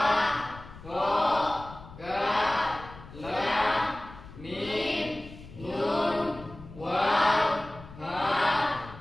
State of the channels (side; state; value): left; noise; rumble, 17 dB below the sound